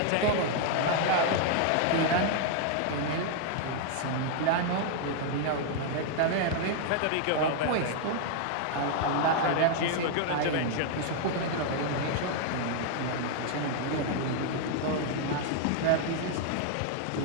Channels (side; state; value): both; different; correlation 0.00